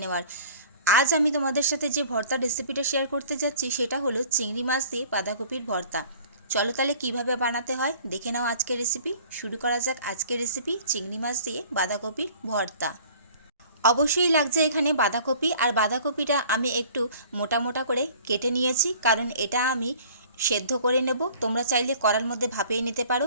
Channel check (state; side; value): inverted; both; correlation -0.50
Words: নেওয়ার। আজ আমি তোমাদের সাথে যে ভর্তার রেসিপিটা শেয়ার করতে যাচ্ছি সেটা হলো চিংড়ি মাছ দিয়ে বাঁধাকপির ভর্তা। চলো তাহলে কীভাবে বানাতে হয় দেখে নাও আজকের রেসিপি। শুরু করা যাক আজকের রেসিপি, চিংড়ি মাছ দিয়ে বাঁধাকপির ভর্তা। অবশ্যই লাগছে এখানে বাঁধাকপি, আর বাঁধাকপিটা আমি একটু মোটা মোটা করে কেটে নিয়েছি, কারণ এটা আমি সেদ্ধ করে নেব। তোমরা চাইলে কড়ার মধ্যে ভাপিয়ে নিতে